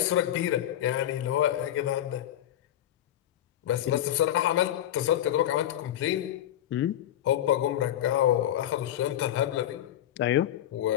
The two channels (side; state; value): right; quieter; 12.0 dB